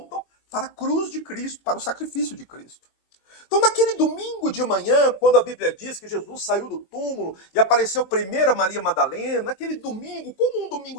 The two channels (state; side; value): late; right; 22 ms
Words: para a cruz de Cristo, para o sacrifício de Cristo. Então naquele domingo de manhã, quando a Bíblia diz que Jesus saiu do túmulo e apareceu primeiro a Maria Madalena, naquele domingo, como um